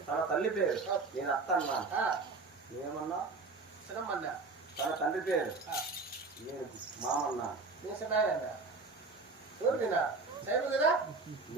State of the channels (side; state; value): left; quieter; 3.9 dB